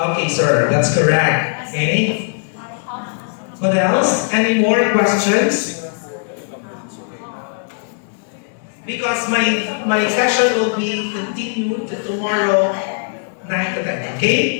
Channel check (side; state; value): right; silent; digital silence